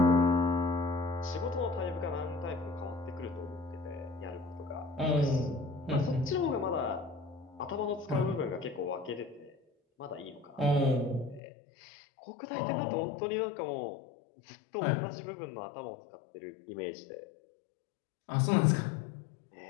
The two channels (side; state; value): right; drops out; at 11.4 s